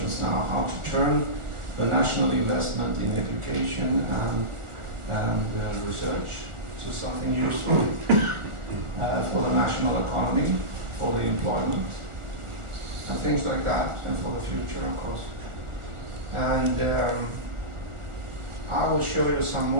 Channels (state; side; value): late; left; 1.4 ms